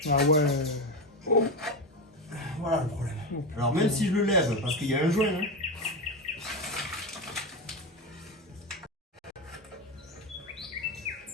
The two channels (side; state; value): both; normal; correlation 0.16